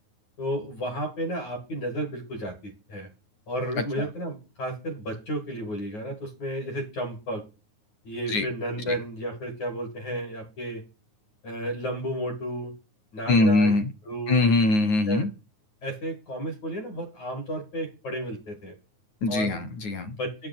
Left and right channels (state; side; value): late; right; 9.5 ms